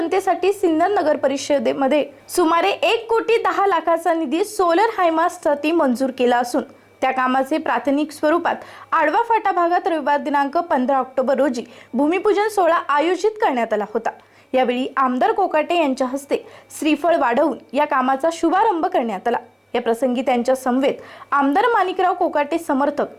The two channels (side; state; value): both; identical; correlation 1.00